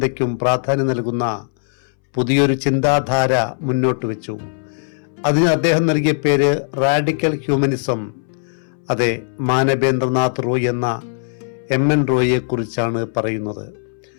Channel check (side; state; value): right; silent; 64 dB below the other